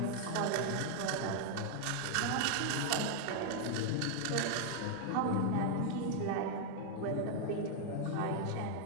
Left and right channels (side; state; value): both; different; correlation 0.00